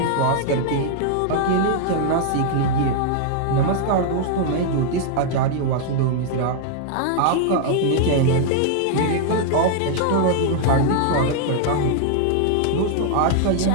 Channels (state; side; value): different; both; correlation -0.01